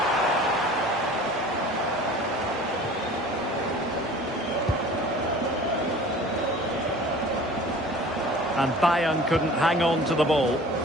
And Bayern couldn't hang on to the ball.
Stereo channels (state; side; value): normal; both; correlation 0.44